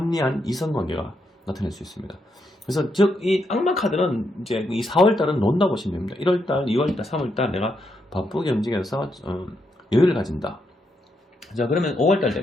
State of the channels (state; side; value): normal; both; correlation 0.80